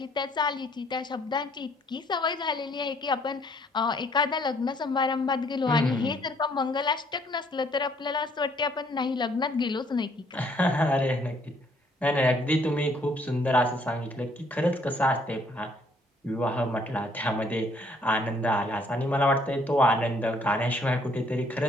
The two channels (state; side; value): normal; both; correlation 0.65